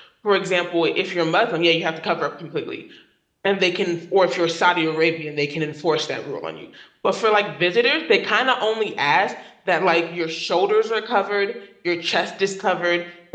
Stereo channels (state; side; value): identical; both; correlation 1.00